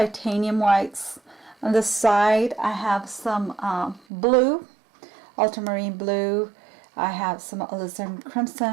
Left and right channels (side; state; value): left; drops out; at 4.0 s